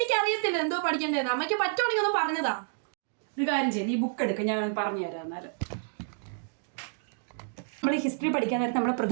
അറിയത്തില്ല എന്തോ പഠിക്കേണ്ടത്. അമ്മയ്ക്ക് പറ്റുവാണെങ്കിൽ ഒന്ന് പറഞ്ഞതാ. ഒരു കാര്യം ചെയ്യും, നീ ബുക്ക് എടുക്കുക, ഞാൻ പറഞ്ഞു തരാം. എന്നാലും നമ്മൾ ഹിസ്റ്ററി പഠിക്കാൻ നേരത്തെ നമ്മൾ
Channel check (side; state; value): left; silent; digital silence